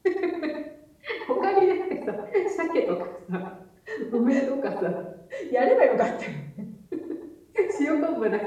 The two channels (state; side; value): identical; both; correlation 1.00